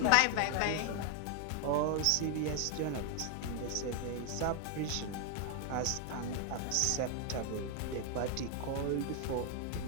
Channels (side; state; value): both; different; correlation 0.00